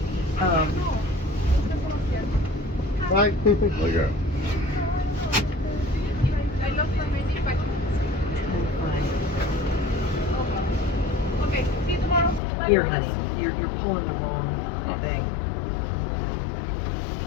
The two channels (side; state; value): right; drops out; at 12.4 s